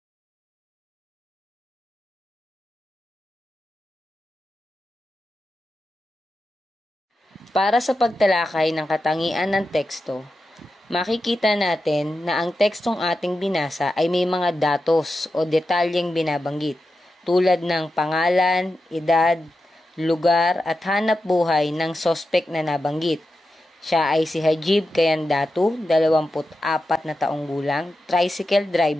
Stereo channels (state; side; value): normal; both; correlation 0.90